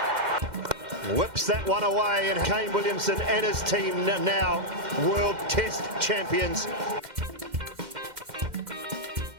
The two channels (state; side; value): late; left; 2.1 ms